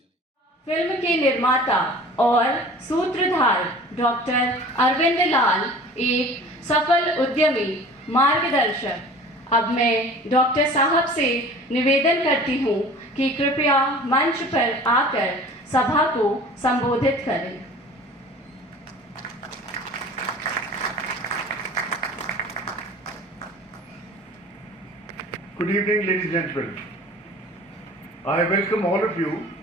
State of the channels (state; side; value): normal; both; correlation 0.43